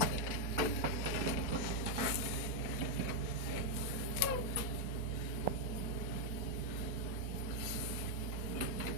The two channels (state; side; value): late; right; 4.4 ms